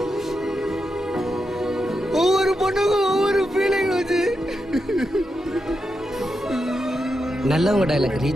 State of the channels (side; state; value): both; normal; correlation 0.86